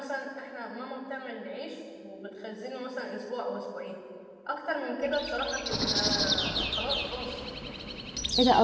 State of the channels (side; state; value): both; identical; correlation 1.00